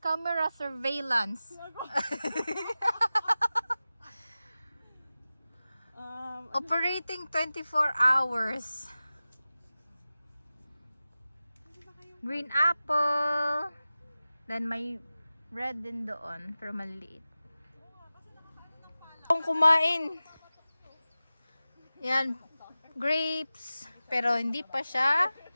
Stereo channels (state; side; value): inverted; both; correlation -0.96